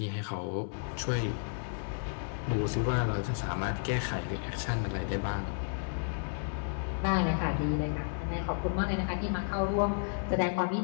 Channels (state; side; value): silent; right; 56 dB below the other